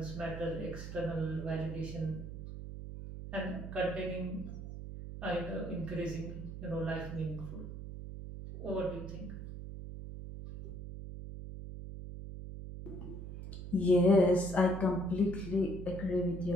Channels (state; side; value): noise; right; hum, 9 dB below the sound